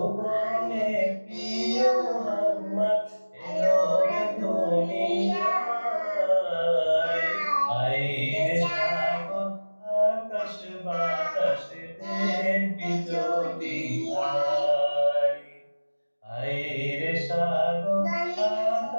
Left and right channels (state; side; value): inverted; both; correlation -1.00